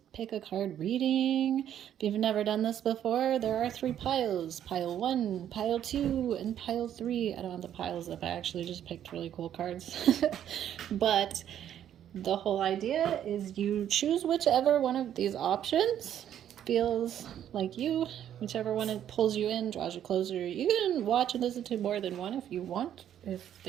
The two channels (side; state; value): left; quieter; 10.4 dB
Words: Pick a Card reading. If you've never done this before, there are 3 piles. Pile 1, Pile 2, and Pile 3. I don't have the piles up. I actually just picked really cool cards. But the whole idea is you choose whichever one of these options feels like you, whichever one it pulls you in, draws you closer. You can watch and listen to more than one if you want, if